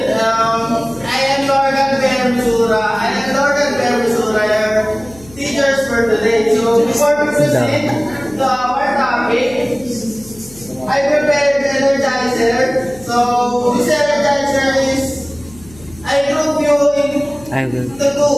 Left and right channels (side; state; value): left; noise; hum, 22 dB below the sound